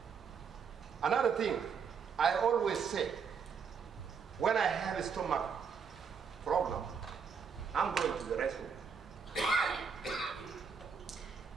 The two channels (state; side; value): quieter; left; 6.3 dB